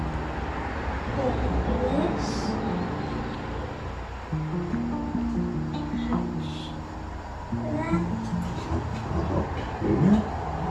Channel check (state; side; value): identical; both; correlation 1.00